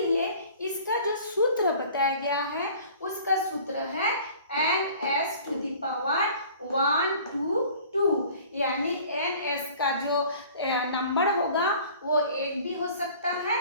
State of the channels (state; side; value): inverted; both; correlation -0.48